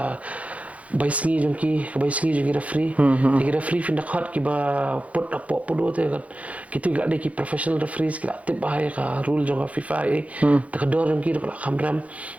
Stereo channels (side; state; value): left; late; 0.066 ms